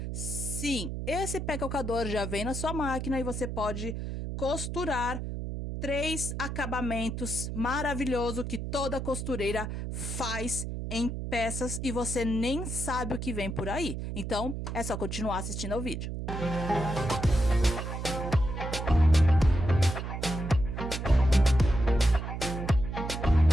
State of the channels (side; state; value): right; noise; hum, 5 dB below the sound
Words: Sim, esse pé calcador já vem na sua máquina e você pode costurar 3 acabamentos maravilhosos que toda costureira faz em peças e você nem sabe o que vem por aí. Então, é só continuar assistindo ao vídeo.